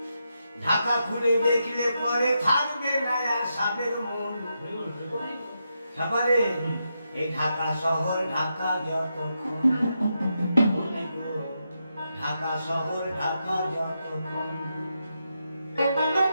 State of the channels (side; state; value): both; inverted; correlation -0.85